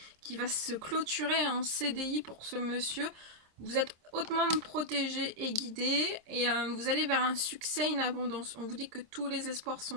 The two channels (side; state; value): left; late; 26 ms